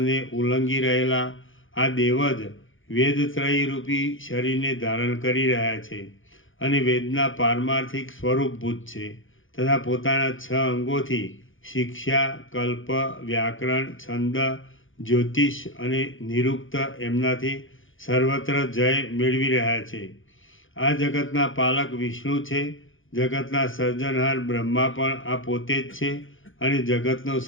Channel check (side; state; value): right; late; 0.58 ms